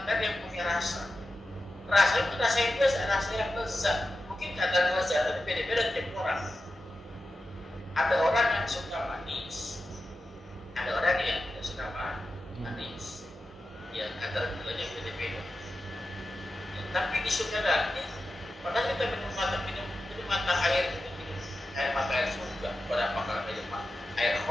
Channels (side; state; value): both; normal; correlation 0.92